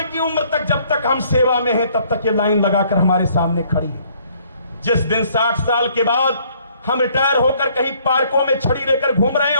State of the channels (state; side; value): inverted; both; correlation -0.63